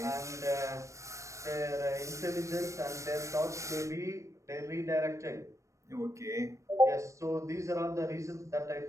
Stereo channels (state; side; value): late; left; 0.15 ms